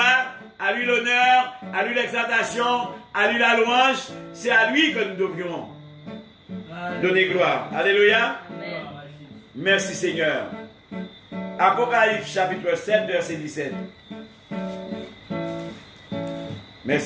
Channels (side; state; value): both; identical; correlation 1.00